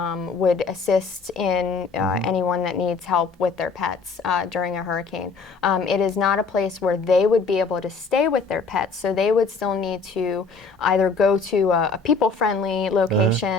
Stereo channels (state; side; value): quieter; right; 4.5 dB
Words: would assist in anyone that needs help with their pets during a hurricane. It is not a place where they would be able to stay with their pets, so they would still need to either go to a people-friendly